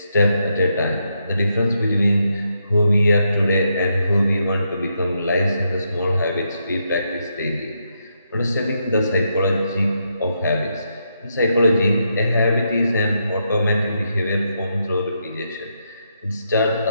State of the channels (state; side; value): inverted; both; correlation -0.81